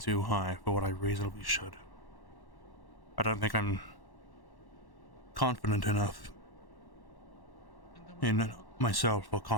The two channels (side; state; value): right; late; 1.1 ms